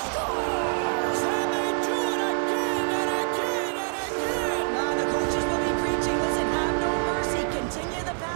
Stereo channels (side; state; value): left; silent; digital silence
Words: And they do it again and again and again! The coaches will be preaching. Listen, have no mercy. Continue the